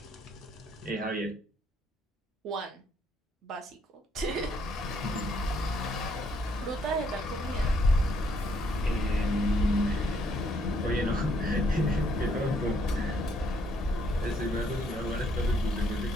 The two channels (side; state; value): both; normal; correlation 0.69